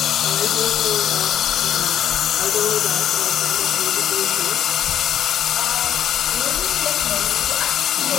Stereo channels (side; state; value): right; quieter; 10.2 dB